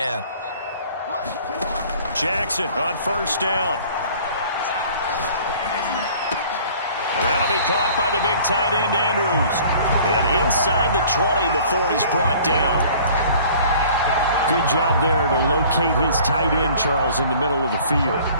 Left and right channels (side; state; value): both; inverted; correlation -0.50